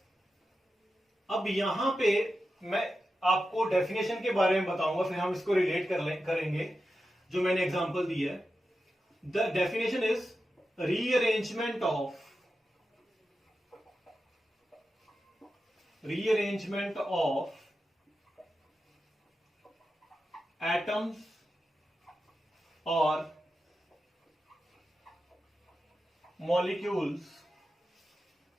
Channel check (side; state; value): both; normal; correlation 0.91